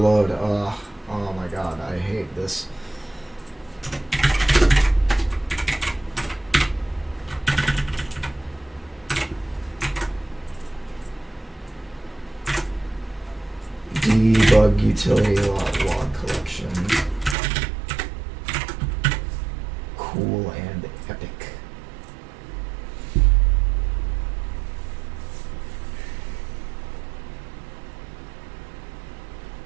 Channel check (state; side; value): drops out; left; at 17.4 s